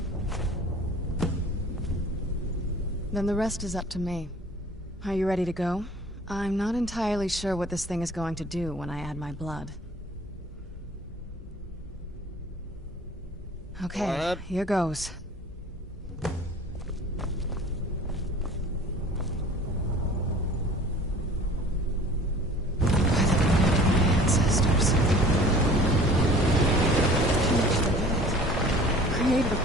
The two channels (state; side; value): normal; both; correlation 0.47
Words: Then the rest is up to me. Are you ready to go? I'm not entirely sure what this thing is going to do when I add my blood. Okay, here goes. Ancestors. Created a